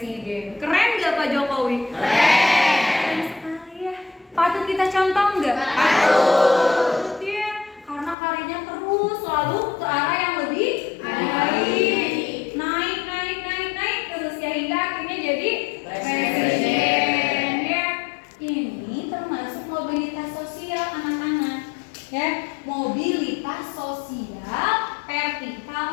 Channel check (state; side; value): drops out; right; at 8.2 s